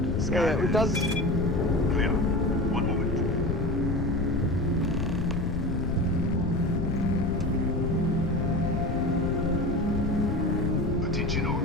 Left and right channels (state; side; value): noise; left; rumble, 1 dB below the sound